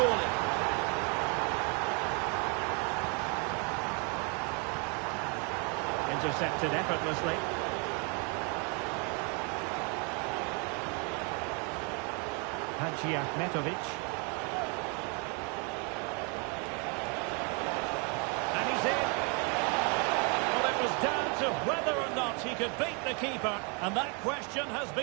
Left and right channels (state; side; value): quieter; left; 35.0 dB